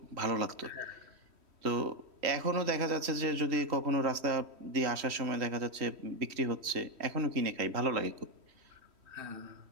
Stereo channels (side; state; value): left; late; 3.1 ms